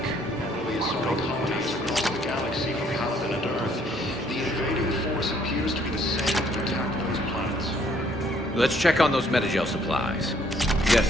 and will be assaulting colonies across the galaxy from Paladin and Earth. The invading force appears to be the same that attacked those planets. Let's check on those metagel supplies. Yes,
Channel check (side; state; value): both; normal; correlation 0.64